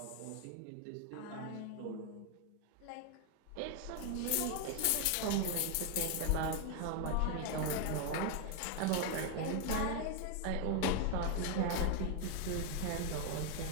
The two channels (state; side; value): different; both; correlation 0.00